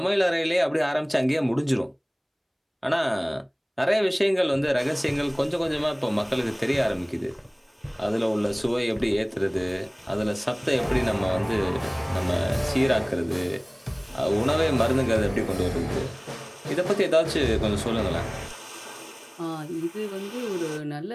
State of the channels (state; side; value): identical; both; correlation 1.00